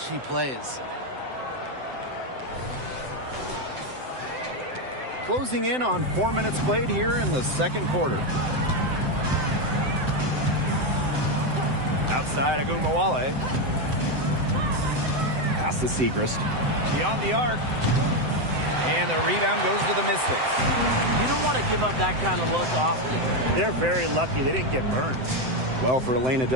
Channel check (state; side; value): late; left; 7.8 ms